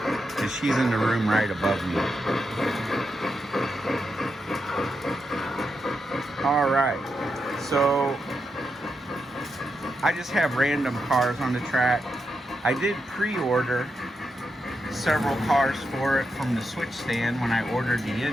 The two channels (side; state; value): both; normal; correlation 0.85